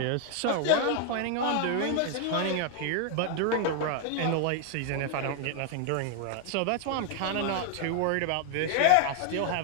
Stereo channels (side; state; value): both; different; correlation 0.00